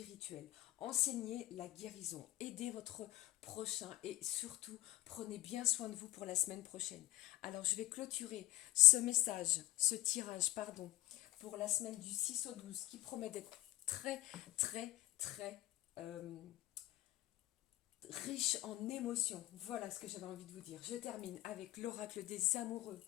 Enseignez la guérison. Aidez votre prochain et surtout prenez bien soin de vous pour la semaine prochaine. Alors je vais clôturer ce message, ce tirage, pardon, pour la semaine du 6 au 12 qui promet d'être très très très riche en émotions. Voilà ce que j'avais envie de vous dire. Je termine avec l'oracle des amoureux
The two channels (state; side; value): quieter; right; 16.6 dB